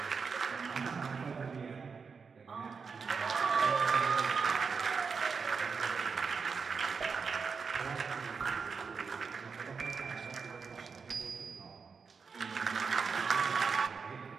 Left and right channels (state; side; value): quieter; left; 5.4 dB